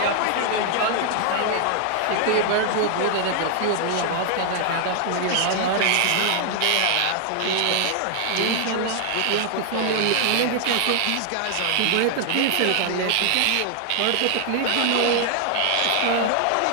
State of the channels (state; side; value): different; both; correlation 0.00